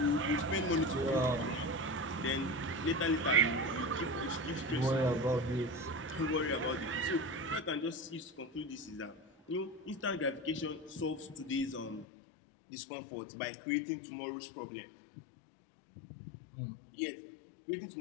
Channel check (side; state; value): right; drops out; at 12.1 s